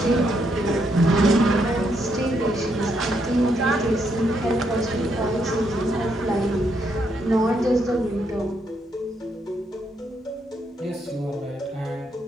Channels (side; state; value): both; normal; correlation 0.76